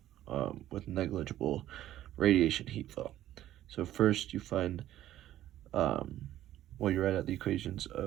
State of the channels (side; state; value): left; quieter; 13.1 dB